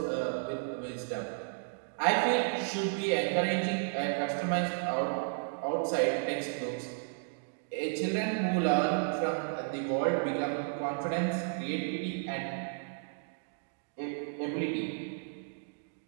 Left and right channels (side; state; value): left; silent; digital silence